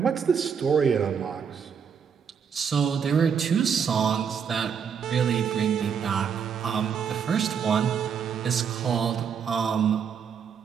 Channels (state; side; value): quieter; left; 7.1 dB